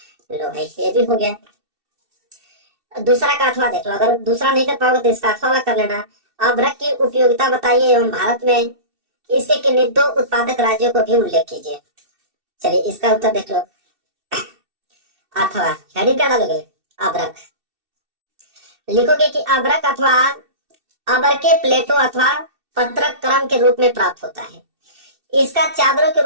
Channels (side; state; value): left; late; 2.7 ms